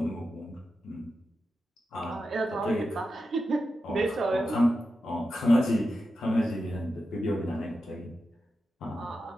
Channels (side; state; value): both; normal; correlation 0.90